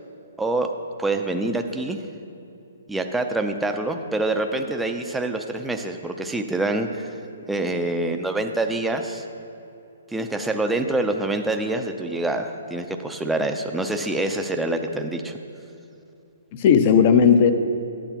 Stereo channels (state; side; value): normal; both; correlation 0.05